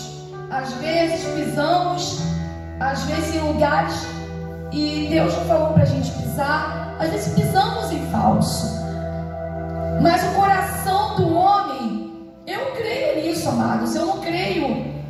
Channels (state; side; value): identical; both; correlation 1.00